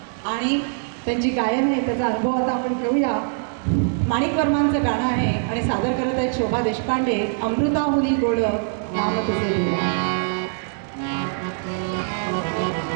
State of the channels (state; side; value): silent; left; digital silence